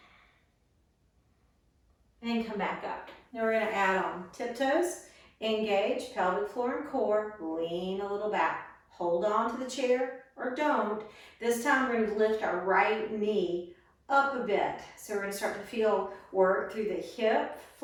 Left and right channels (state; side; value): identical; both; correlation 1.00